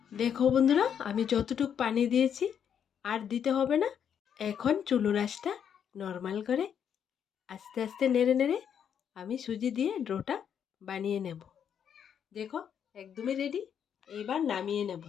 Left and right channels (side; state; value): right; quieter; 8.3 dB